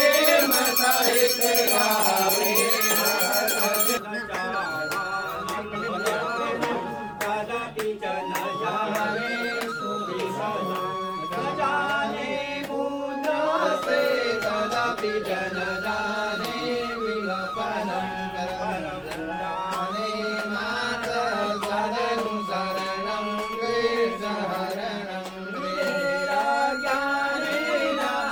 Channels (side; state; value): both; identical; correlation 1.00